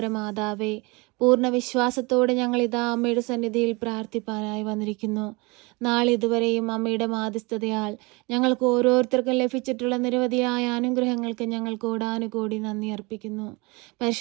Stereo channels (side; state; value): left; quieter; 26.7 dB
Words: മാതാവേ, പൂർണ്ണ വിശ്വാസത്തോടെ ഞങ്ങൾ ഇതാ അമ്മയുടെ സന്നിധിയിൽ പ്രാർത്ഥിപ്പാനായി വന്നിരിക്കുന്നു. നാളിതുവരെയും അമ്മയുടെ മാധ്യസ്ഥതയാൽ ഞങ്ങൾക്ക് ഓരോരുത്തർക്കും ലഭിച്ചിട്ടുള്ള നിരവധിയായ അനുഗ്രഹങ്ങൾക്ക് ഞങ്ങൾ കോടാനുകോടി നന്ദി അർപ്പിക്കുന്നു.